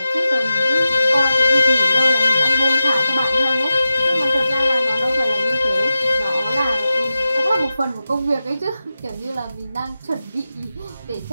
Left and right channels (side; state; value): both; inverted; correlation -0.93